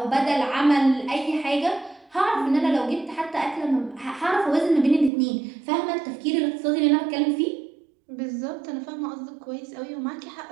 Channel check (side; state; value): left; drops out; at 5.1 s